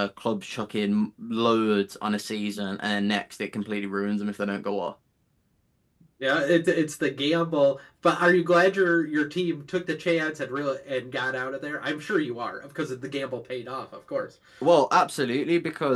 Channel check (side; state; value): both; identical; correlation 1.00